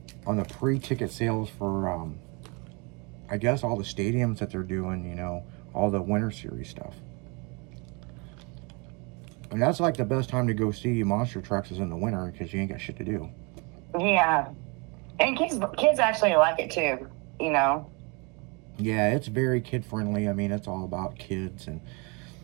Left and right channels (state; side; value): quieter; left; 30.6 dB